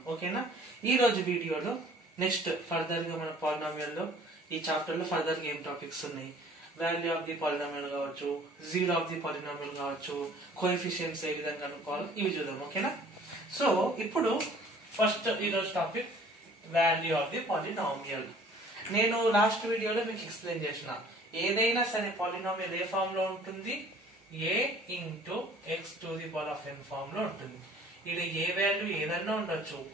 Okay na? Ee roju video lo next further ga mana polynomial lo ee chapter lo further game topics unnai. Value of the polynomial కావచ్చు, zero of the polynomial కావచ్చు, coefficients ఏ విధంగా కనుక్కోవాలి ఇవి చూద్దాం. ఓకేనా? So ఇప్పుడు first ఈరోజు topic value of the polynomial. నేను లాస్ట్ వీడియోలో మీకు ఎక్స్ప్లెయిన్ చేసిన ఏదైనా సరే పాలినామియల్ ఏ ఫామ్ లో ఉంటుంది, a into x to the power of n form లో ఉంటుంది. ఇది ఏ వాల్యూ ఏదన్నా ఉండొచ్చు,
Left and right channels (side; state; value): both; normal; correlation 0.52